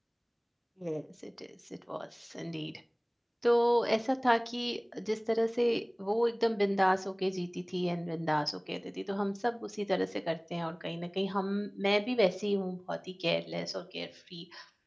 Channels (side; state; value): both; identical; correlation 1.00